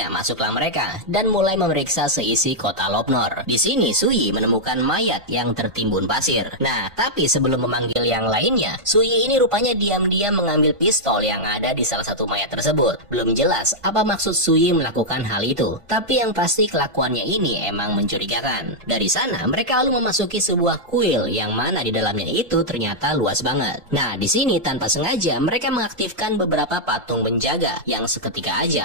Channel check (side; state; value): left; late; 1.5 ms